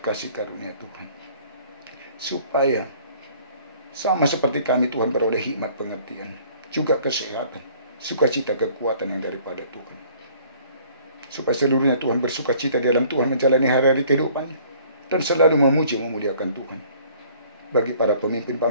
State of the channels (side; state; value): both; inverted; correlation -0.55